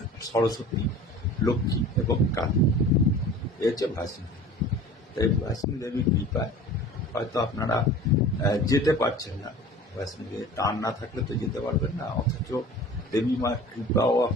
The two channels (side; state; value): both; normal; correlation 0.41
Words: সরস্বতী, লক্ষ্মী এবং কালী, এ হচ্ছে বৈষ্ণো দেবী। তাই বৈষ্ণো দেবীর কৃপায় হয়তো আপনারা যেতে পারছেন না, বৈষ্ণো দেবীর টান না থাকলে তো যেতে পারবেন না, অথচ দেবী মার কৃপাও